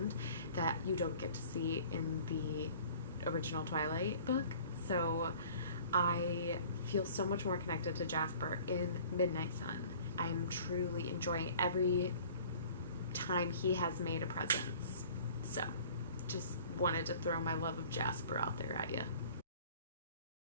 that you don't get to see in the original Twilight book. So I feel so much more connected to Jasper in Midnight Sun. I'm truly enjoying every time he has made a presence. So just wanted to throw my love of Jasper out there at you.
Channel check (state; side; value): inverted; both; correlation -0.48